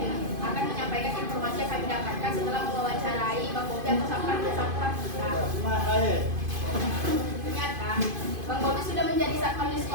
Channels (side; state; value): left; late; 2.5 ms